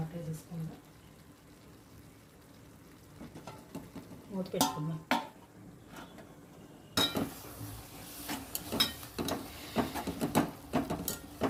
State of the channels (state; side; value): identical; both; correlation 1.00